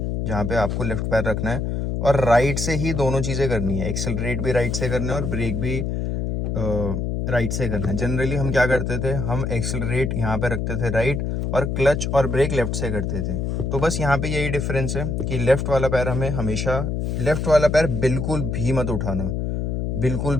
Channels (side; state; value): left; noise; hum, 1 dB below the sound